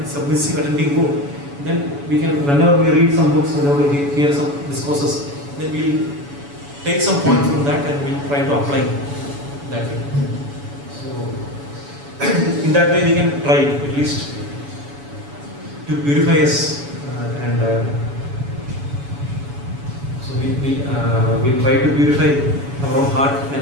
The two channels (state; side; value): late; left; 7.1 ms